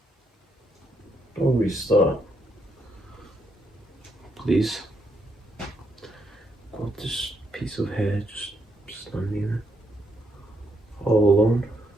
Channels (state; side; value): normal; both; correlation 0.77